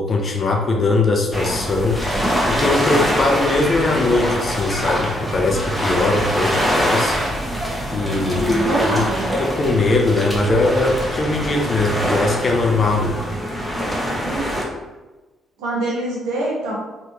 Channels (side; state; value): both; normal; correlation 0.73